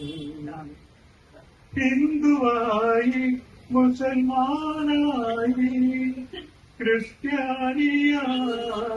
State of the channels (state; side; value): identical; both; correlation 1.00